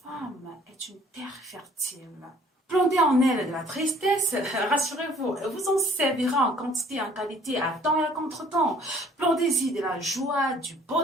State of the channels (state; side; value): normal; both; correlation 0.57